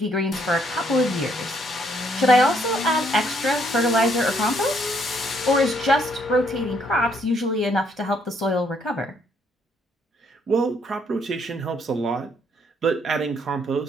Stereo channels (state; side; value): normal; both; correlation 0.69